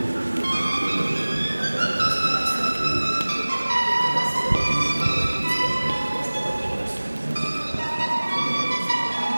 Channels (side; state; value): both; inverted; correlation -1.00